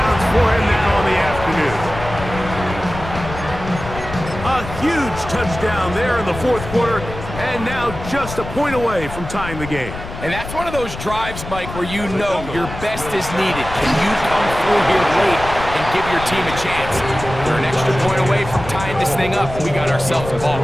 for him now in the afternoon. A huge touchdown there in the fourth quarter, and now just a point away from tying the game. And that's one of those drives, Mike, where you know your best is needed. Can you come through here late and give your team a chance? They're an extra point away from tying this thing up, and we got ourselves a ball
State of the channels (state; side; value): noise; left; rumble, 10 dB below the sound